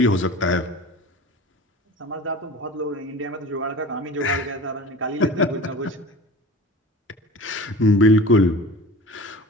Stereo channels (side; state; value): both; normal; correlation 0.37